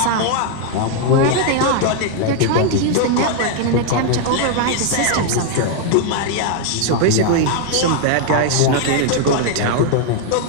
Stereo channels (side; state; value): both; different; correlation 0.00